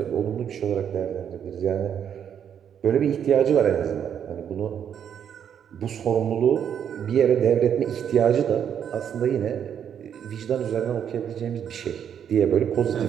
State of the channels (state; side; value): quieter; left; 8.6 dB